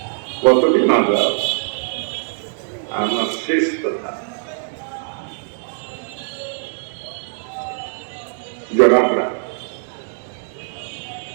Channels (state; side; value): silent; left; digital silence